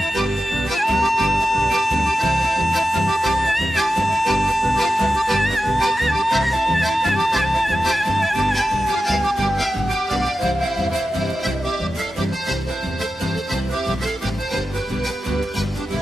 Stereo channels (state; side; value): normal; both; correlation 0.92